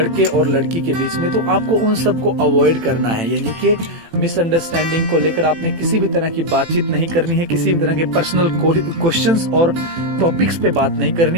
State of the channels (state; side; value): late; left; 18 ms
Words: और लड़की के बीच में, तो आपको उन सब को अवॉइड करना है। यानी कि मिसअंडरस्टैंडिंग को लेकर आपने किसी भी तरह की बातचीत नहीं करनी है, किसी भी तरह के पर्सनल क्वेश्चंस और टॉपिक्स पे बात नहीं करनी